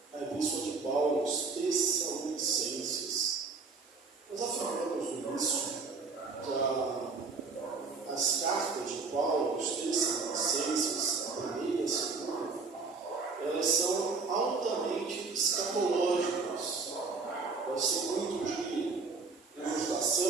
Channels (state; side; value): quieter; left; 4.4 dB